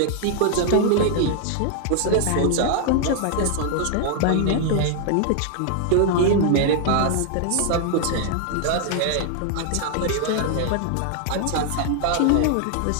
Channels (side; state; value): both; different; correlation 0.00